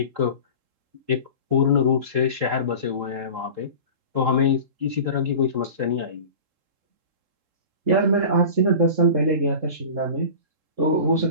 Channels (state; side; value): late; left; 3.7 ms